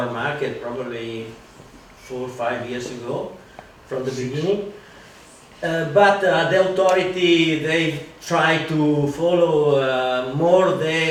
market probably 4 or 5 years ago from the beginning. But the authority, they try to follow more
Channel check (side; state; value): both; identical; correlation 1.00